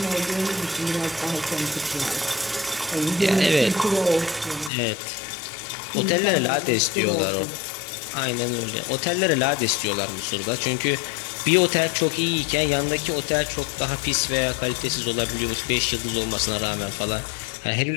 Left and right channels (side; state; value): right; drops out; at 4.7 s